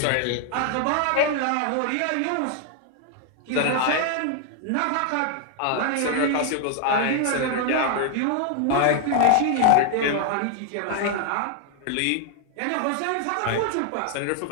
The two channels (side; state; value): both; different; correlation 0.00